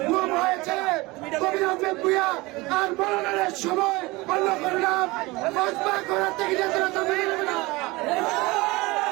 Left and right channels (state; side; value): quieter; left; 22.4 dB